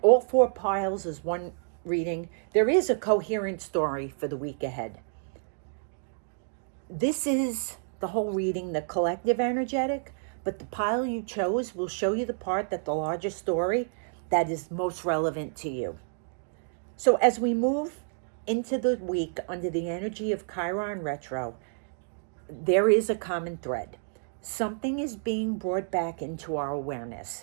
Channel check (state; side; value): silent; left; digital silence